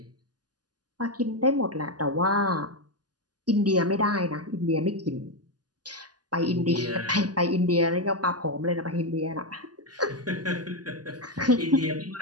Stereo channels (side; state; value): left; late; 0.69 ms